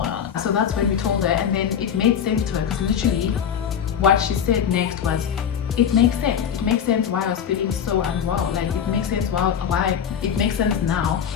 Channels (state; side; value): quieter; right; 8.3 dB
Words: So that's when we told her, and then it made sense to her, because literally what she said next was, it makes sense. It makes sense why I was feeling so unwell. Like, it makes sense why it makes sense now